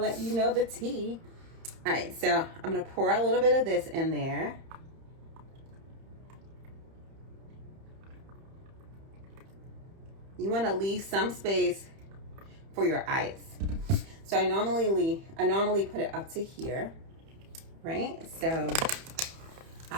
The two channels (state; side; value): late; left; 30 ms